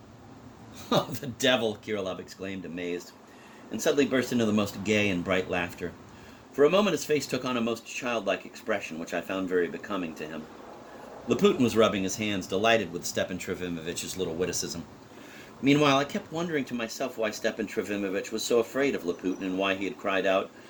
Oh, the devil, Kirillov exclaimed, amazed, and suddenly burst into the most gay and bright laughter. For a moment his face took on a most childlike expression, which I found very becoming to him. Laputin was rubbing his hands, delighted with Stepan Trofimovich's little witticism. Meanwhile, I kept wondering to myself why Stepan Trofimovich was so afraid of Laputin and why he had cried out,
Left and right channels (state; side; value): identical; both; correlation 1.00